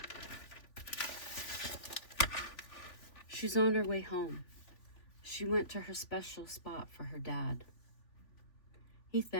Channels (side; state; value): right; late; 3.5 ms